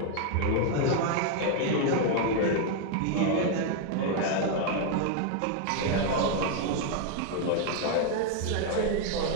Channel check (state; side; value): different; both; correlation 0.00